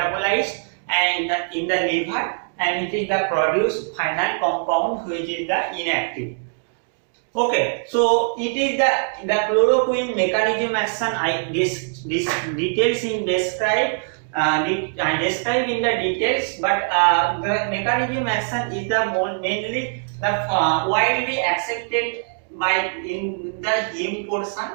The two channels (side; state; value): left; silent; digital silence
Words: and in the liver, and it is the produced final compound which is the inactive. Okay, so it is the chloroquine mechanism action details in describe in the details, but the mechanism action is the mainly the widely accepted by in the heme portion,